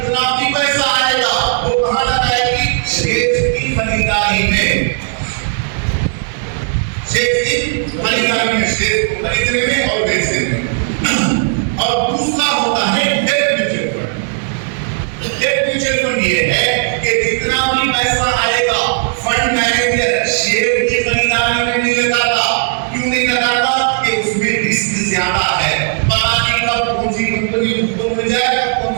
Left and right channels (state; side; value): silent; left; digital silence